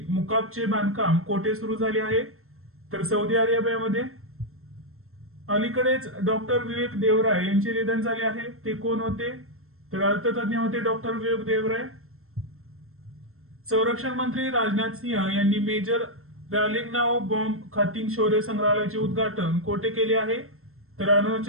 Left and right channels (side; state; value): left; late; 0.62 ms